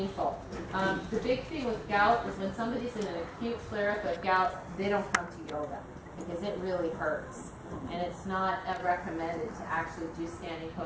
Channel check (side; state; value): both; identical; correlation 1.00